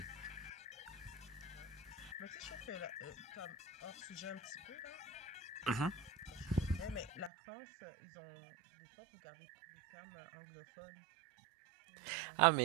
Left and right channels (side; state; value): left; drops out; at 7.3 s